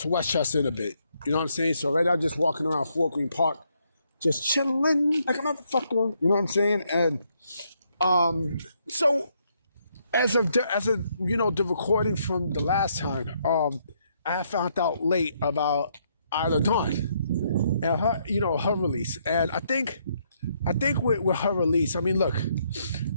Westchester in a bit. You know what I'm saying? So right now, I'm just walking around Fort Greene Park, just chilling like a motherfucker. You know what I'm saying? And so. As of the recording from the last time, I found out late about Isla Dawn and her release. And I think with her release, I mean, look,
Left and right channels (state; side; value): inverted; both; correlation -0.73